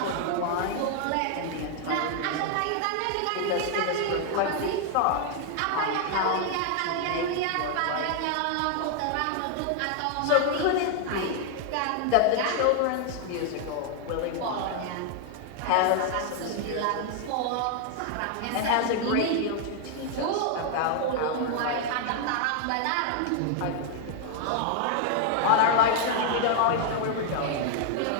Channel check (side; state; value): both; different; correlation 0.00